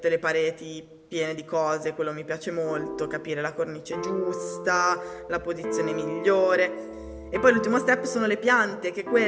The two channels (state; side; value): identical; both; correlation 1.00